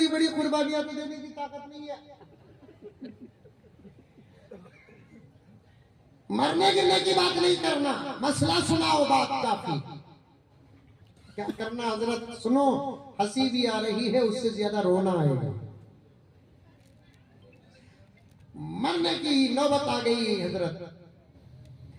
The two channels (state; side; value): identical; both; correlation 1.00